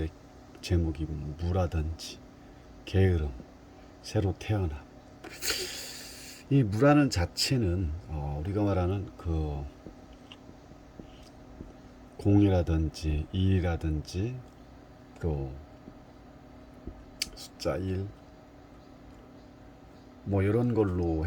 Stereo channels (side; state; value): both; identical; correlation 1.00